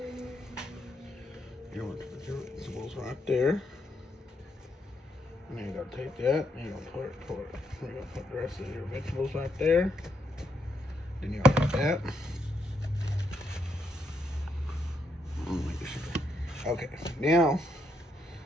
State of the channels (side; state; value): both; normal; correlation 0.78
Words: vegetables right there. And then you're gonna take that and you're gonna you're gonna put the rest of your vegetables right there. Then you're gonna take that. Okay, now